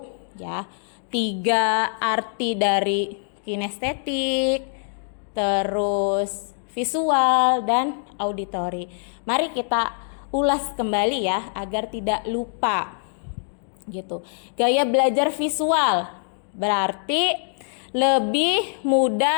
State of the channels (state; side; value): silent; right; 59 dB below the other